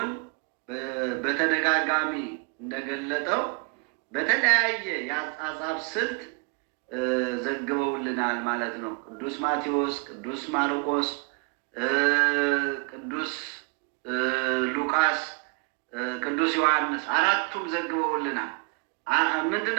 በተደጋጋሚ እንደገለጠው በተለያየ የአጻጻፍ ስልት ዘግበውልናል ማለት ነው። ቅዱስ ማቴዎስ፣ ቅዱስ ማርቆስ፣ ቅዱስ ሉቃስ፣ ቅዱስ ዮሐንስ አራቱም ዘግበውልናል። ምንድን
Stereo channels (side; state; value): left; quieter; 35.0 dB